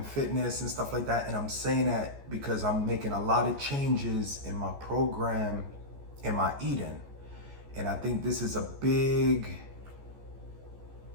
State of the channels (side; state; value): left; late; 14 ms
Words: fitness and stuff like that. And I'm saying that because I'm making a lot of changes in my program, in my eating. And I think this is a big